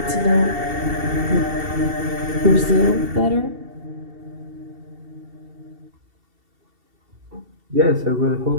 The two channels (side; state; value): left; late; 2.7 ms